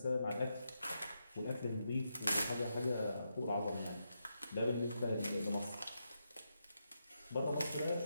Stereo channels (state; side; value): inverted; both; correlation -0.84